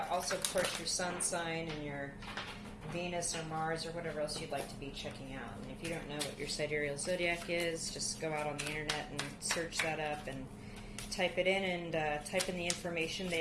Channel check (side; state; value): both; identical; correlation 1.00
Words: Also, of course, your sun sign and your Venus or Mars or whatever else you'd like to be checking out. And if you don't know what your sidereal zodiac is, just go out on the internet and search that up and type it in and type in the information